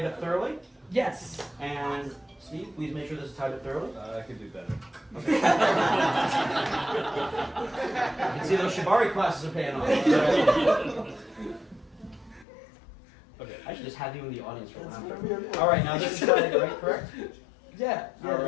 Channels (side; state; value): right; drops out; at 12.5 s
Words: up thoroughly. Yes. And Steve, please make sure this is tied up thoroughly. I can do better. Okay. You can see those Shibari classes are paying off. Okay, I should just have you in the audience for one. All right, now this is tied, right? Correct? Yeah. All